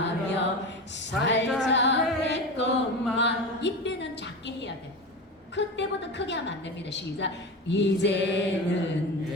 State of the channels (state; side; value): normal; both; correlation 0.25